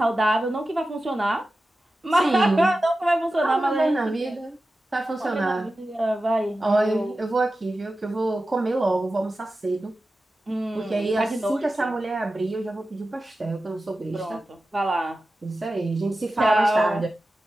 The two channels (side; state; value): both; normal; correlation 0.94